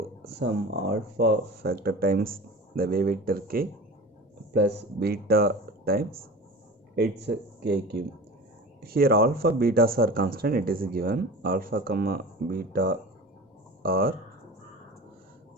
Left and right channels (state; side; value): normal; both; correlation 0.35